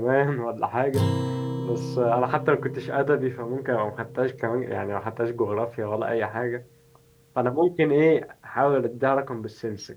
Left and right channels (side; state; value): both; identical; correlation 1.00